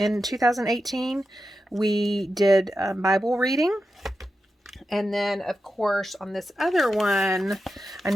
2018. We did Bible reading. And then, of course, on this other one, I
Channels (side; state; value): both; normal; correlation 0.90